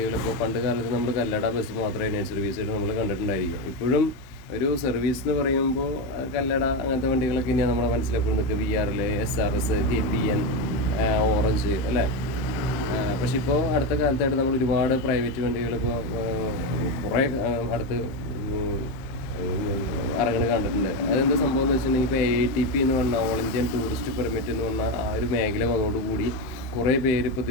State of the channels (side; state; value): right; late; 15 ms